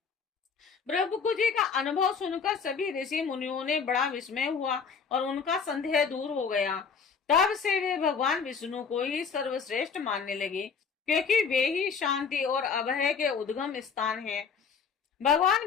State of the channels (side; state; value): right; quieter; 5.9 dB